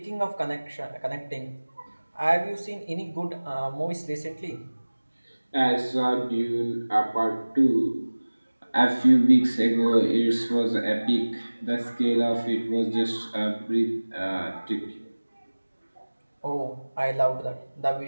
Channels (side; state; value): both; inverted; correlation -1.00